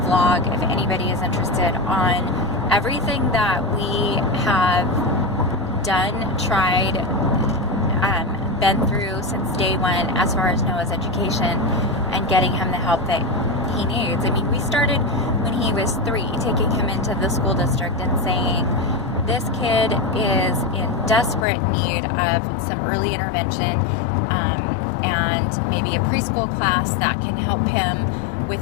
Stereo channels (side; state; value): right; drops out; at 21.5 s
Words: if anybody is interested on everything that we have done, tried, been through since day one as far as Noah's education and getting him the help that he needs. I mean, we started when he was 3, taking him into the school district and saying, this kid is in desperate need of some early intervention and maybe a preschool class that can help him